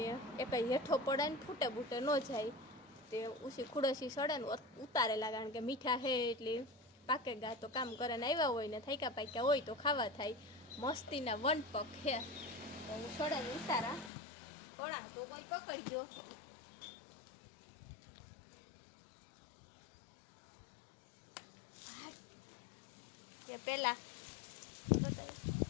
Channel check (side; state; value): right; drops out; at 14.1 s